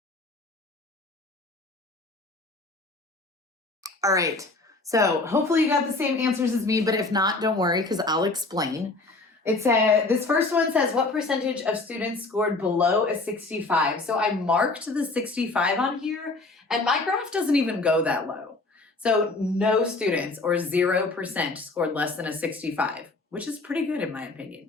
All right, so hopefully you got the same answers as me, but if not, don't worry because I'll explain. It said, this first one says, what percentage of students scored below a 65? So I marked the 65 on here and my graph doesn't even go that low. So no students or 0% scored less than a 65, which is pretty good in my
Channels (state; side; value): quieter; right; 3.3 dB